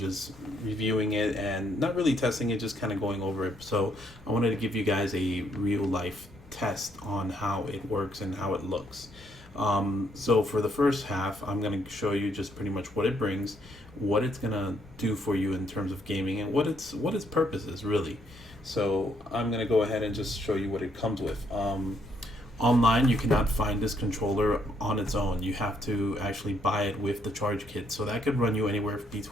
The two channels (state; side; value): normal; both; correlation 0.72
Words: reviewing it and not really testing it, just kind of going over it. So I wanted to give you guys a real life test on how it works and how it looks. So for the first half, I'm going to show you just pretty much what it brings, what it's going to do for you in terms of gaming, and what its purpose is really. So I'm going to go ahead and just show you what it comes with. Online, you cannot find this controller on its own. You have to actually buy it with the charge kit. So that could run you anywhere